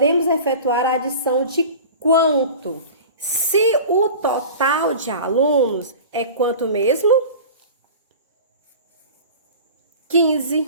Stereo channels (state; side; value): inverted; both; correlation -0.37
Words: efetuar a adição de quanto? Se o total de alunos é quanto mesmo? 15,